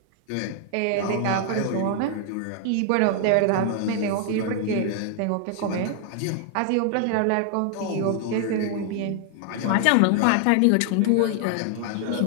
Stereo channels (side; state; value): both; different; correlation 0.00